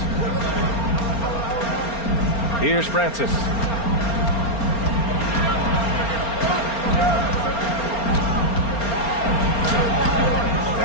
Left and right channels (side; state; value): right; late; 4.3 ms